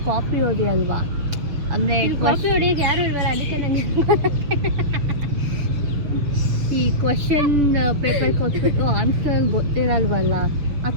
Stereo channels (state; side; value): late; left; 7.0 ms